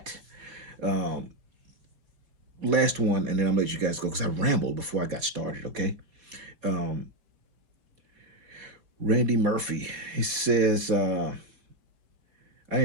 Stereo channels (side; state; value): left; late; 4.5 ms